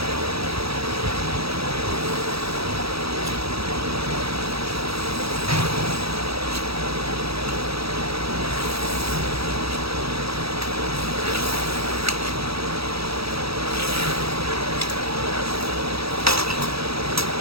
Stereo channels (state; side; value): late; left; 0.77 ms